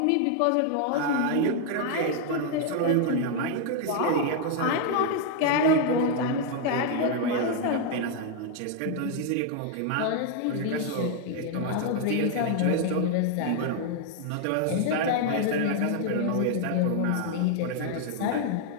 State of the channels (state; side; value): different; both; correlation 0.00